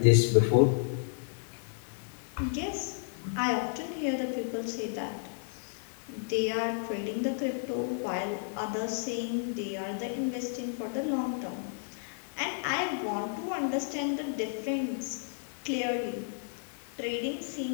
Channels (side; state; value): right; silent; digital silence